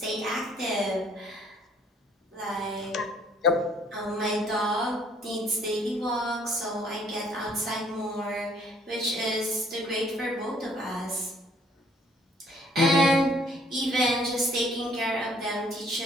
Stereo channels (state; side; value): normal; both; correlation 0.62